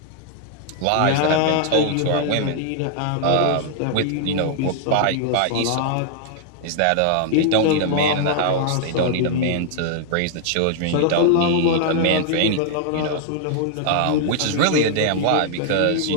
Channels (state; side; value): different; both; correlation 0.00